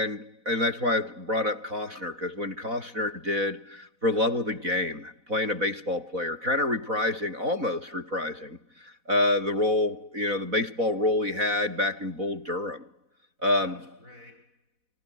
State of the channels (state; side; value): late; left; 4.1 ms